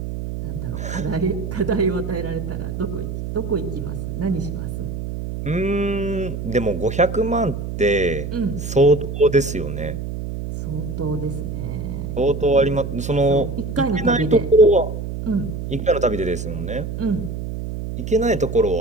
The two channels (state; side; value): noise; right; hum, 5 dB below the sound